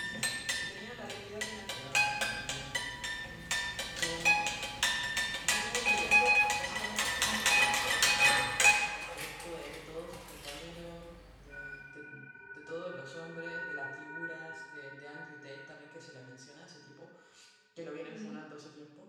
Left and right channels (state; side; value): identical; both; correlation 1.00